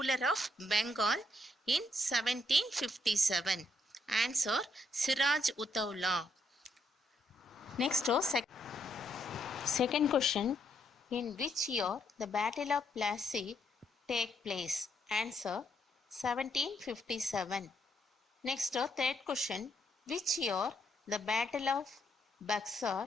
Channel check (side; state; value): both; normal; correlation 0.75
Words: of Bengal in 1757? Answer, Siraj Uttaula. Next, second question, in which year the Battle of Plassey take place? Answer, 1757. Next, third question, which year the Battle of